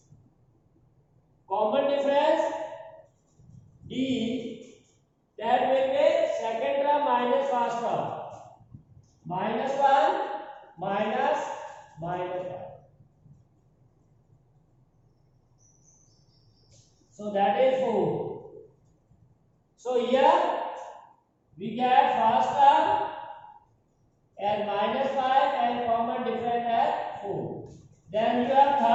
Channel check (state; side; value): identical; both; correlation 1.00